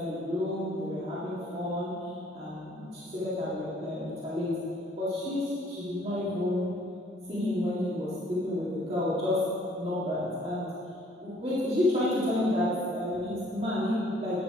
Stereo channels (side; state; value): both; normal; correlation 0.60